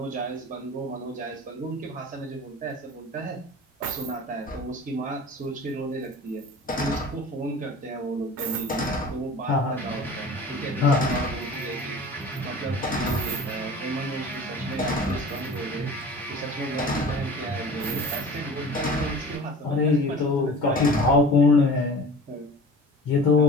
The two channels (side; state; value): both; normal; correlation 0.40